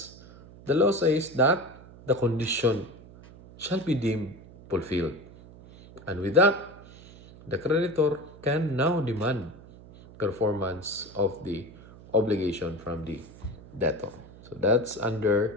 the law says that the condition shall be deemed fulfilled. And with that, the creditor can now demand performance of the obligation from the debtor. So that's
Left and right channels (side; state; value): right; noise; hum, 20 dB below the sound